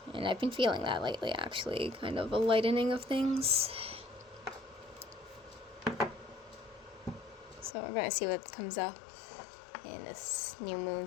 And I've been feeling that lately, actually. Kind of a lightening of things. So we're going to see what comes up in this new moon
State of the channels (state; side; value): drops out; right; at 7.8 s